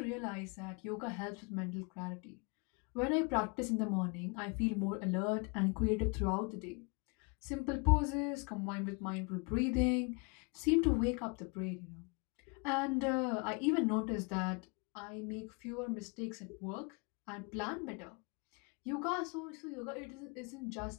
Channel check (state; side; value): quieter; right; 32.2 dB